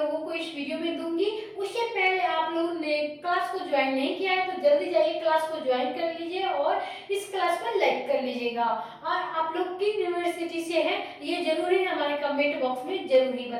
को इस वीडियो में दूंगी। उससे पहले आप लोगों ने क्लास को ज्वाइन नहीं किया है तो जल्दी जाइए क्लास को ज्वाइन कर लीजिए और इस क्लास को लाइक कर लीजिएगा। और आप लोग किस यूनिवर्सिटी से हैं ये जरूरी हमारे कमेंट बॉक्स में जरूर ही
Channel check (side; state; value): both; identical; correlation 1.00